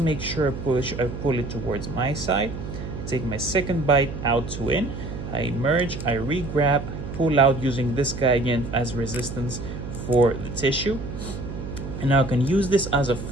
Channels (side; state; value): right; noise; hum, 8 dB below the sound